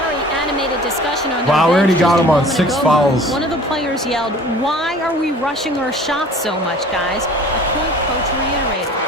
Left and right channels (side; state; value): both; normal; correlation 0.47